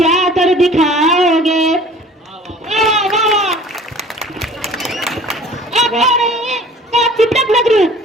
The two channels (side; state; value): both; normal; correlation 0.47